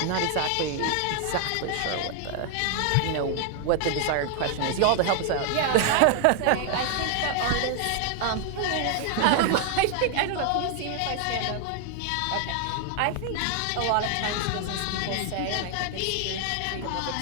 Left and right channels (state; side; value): different; both; correlation 0.00